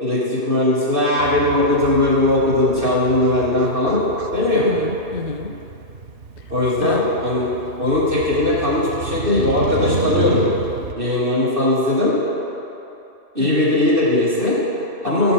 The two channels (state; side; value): late; left; 2.6 ms